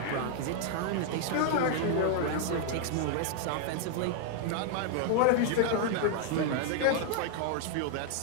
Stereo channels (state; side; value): different; both; correlation 0.00